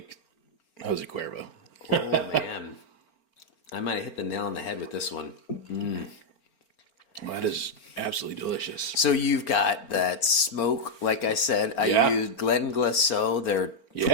Jose Cuervo. Oh man, I might have hit the nail on the head with this one. That is absolutely delicious. So you've got that smoke, like I said. I Yeah. used Glen Glaceau, their Yeah.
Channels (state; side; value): late; right; 4.4 ms